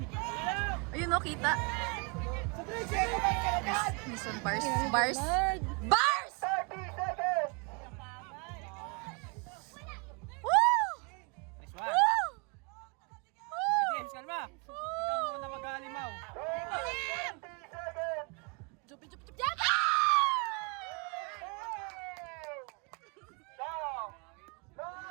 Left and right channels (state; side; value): quieter; left; 33.2 dB